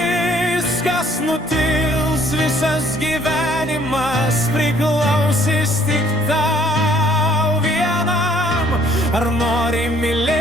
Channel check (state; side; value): normal; both; correlation 0.61